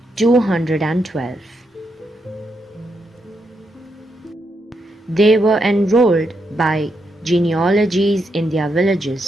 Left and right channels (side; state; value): both; normal; correlation 0.81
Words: 212. They were enrolled by genealogies in their